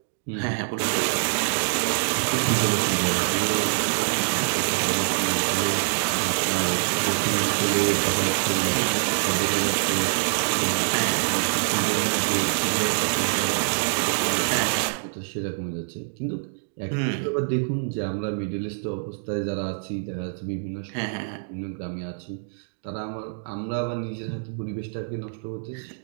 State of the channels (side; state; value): left; silent; digital silence